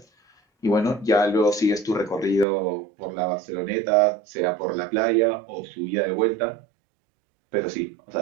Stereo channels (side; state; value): left; drops out; at 2.5 s